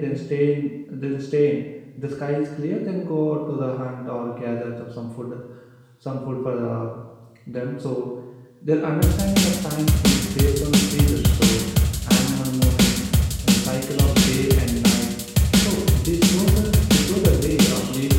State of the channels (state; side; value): identical; both; correlation 1.00